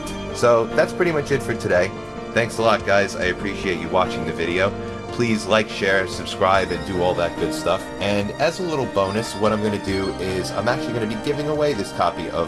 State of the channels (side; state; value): both; identical; correlation 1.00